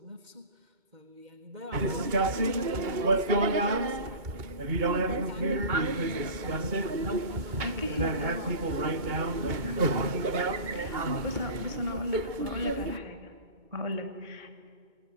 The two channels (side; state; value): left; late; 2.2 ms